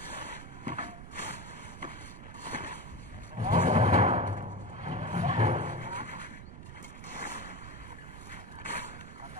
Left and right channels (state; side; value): noise; right; rumble, 12 dB below the sound